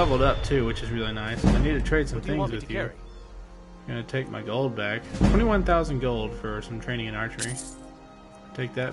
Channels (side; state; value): both; identical; correlation 1.00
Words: up too, which is really nice. I need to trade some things with you. I'm gonna take my gold back. 21,000 gold for some training in archery. Take